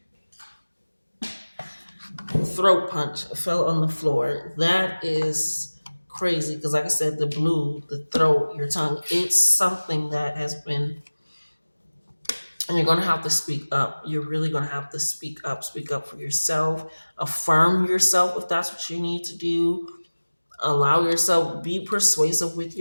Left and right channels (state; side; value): inverted; both; correlation -1.00